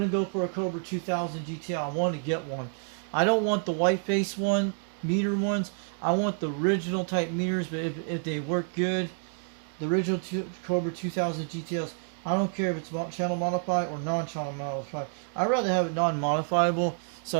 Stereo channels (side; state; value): left; silent; 59 dB below the other